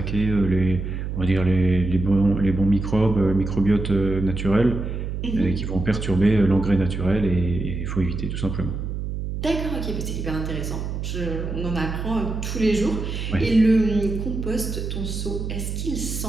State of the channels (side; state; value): right; noise; hum, 4 dB below the sound